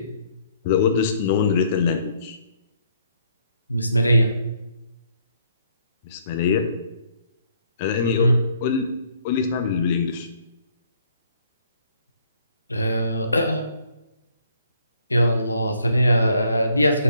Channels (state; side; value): inverted; both; correlation -0.66